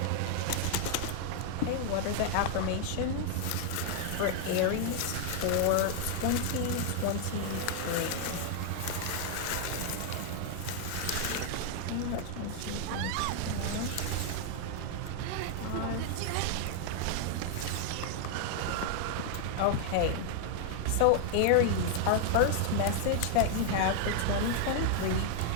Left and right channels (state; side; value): different; both; correlation 0.00